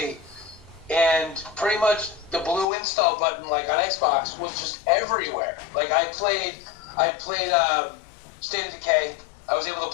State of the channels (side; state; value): right; drops out; at 2.7 s